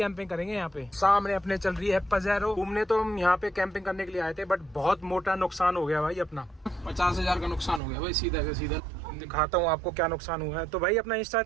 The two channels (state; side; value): drops out; left; at 7.8 s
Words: करेंगे यहाँ पे। सामने अपने चल रही है पजेरो। घूमने तो हम यहाँ पे कैंपिंग करने के लिए आए थे, बट बहुत मोटा नुकसान हो गया भाई अपना। 50,000 का नुकसान हो गया भाई, सीधा का सीधा। दिखाता हूँ आपको क्या नुकसान हुआ है। तो भाई अपना इंस्टा